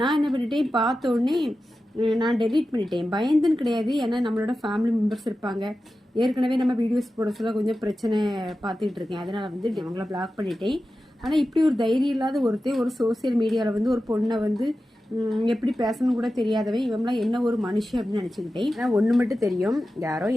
நான் என்ன பண்ணிட்டேன், பார்த்த உடனே நான் டெலீட் பண்ணிட்டேன். பயந்துன்னு கிடையாது, ஏன்னா நம்மளோட ஃபேமிலி மெம்பர்ஸ் இருப்பாங்க. ஏற்கனவே நம்ம வீடியோஸ் போட சொல்ல கொஞ்சம் பிரச்சனை பார்த்துக்கிட்டு இருக்கேன். அதனால் வந்து அவங்கள பிளாக் பண்ணிட்டேன். ஆனால் இப்படி ஒரு தைரியம் இல்லாத ஒருத்தர் ஒரு சோசியல் மீடியாவில் வந்து ஒரு பொண்ணை வந்து எப்படி பேசணும் கூட தெரியாதவன் இவங்களாம் என்ன ஒரு மனுஷன் அப்படின்னு நினச்சிக்கிட்டேன். ஆனால் ஒன்று மட்டும் தெரியும், யாரோ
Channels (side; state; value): both; normal; correlation 0.93